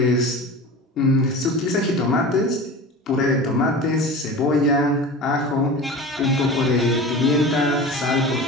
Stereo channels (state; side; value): normal; both; correlation 0.34